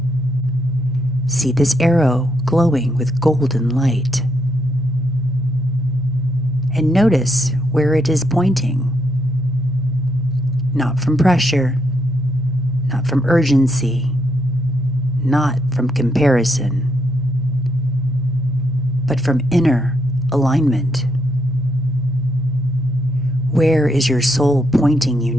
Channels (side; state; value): right; noise; rumble, 25 dB below the sound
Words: See this arrow glowing with golden light. And notice where it is pointing. Not from pressure, not from urgency, not from comparison, but from inner alignment. Where is your soul pointing you